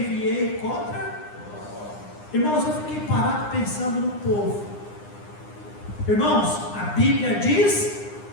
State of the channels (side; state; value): right; late; 9.8 ms